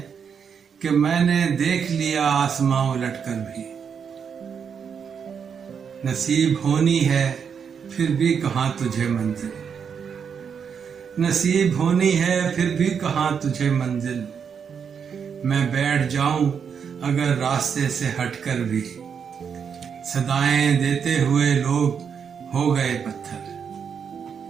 कि मैंने देख लिया आसमां उलटकर भी। नसीब होनी है फिर भी कहां तुझे मंजिल, नसीब होनी है फिर भी कहां तुझे मंजिल। मैं बैठ जाऊं अगर रास्ते से हटकर भी, सदाएं देते हुए लोग हो गए पत्थर,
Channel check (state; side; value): quieter; left; 6.9 dB